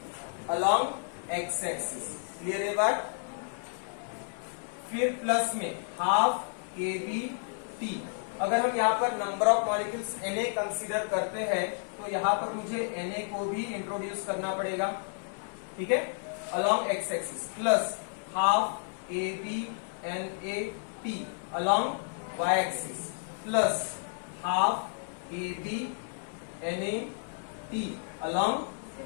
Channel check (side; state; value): right; silent; digital silence